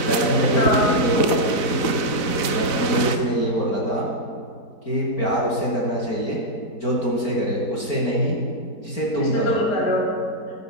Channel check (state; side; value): late; right; 4.1 ms